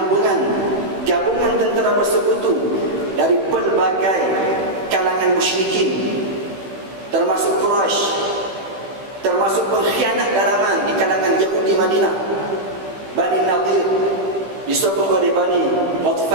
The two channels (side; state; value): left; late; 15 ms